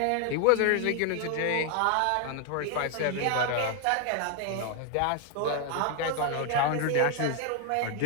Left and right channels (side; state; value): both; different; correlation 0.00